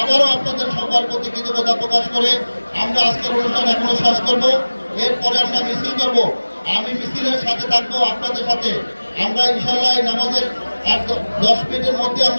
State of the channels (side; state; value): both; inverted; correlation -1.00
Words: আবারও আপনাদের সবার প্রতি কৃতজ্ঞতা প্রকাশ করে আমরা আজকের অনুষ্ঠান এখনো শেষ করব। এরপরে আমরা মিছিল করব। আমি মিছিলের সাথে থাকবো, আপনাদের সাথে। আমরা ইনশাল্লাহ নামাজের 10 মিনিটের মধ্যে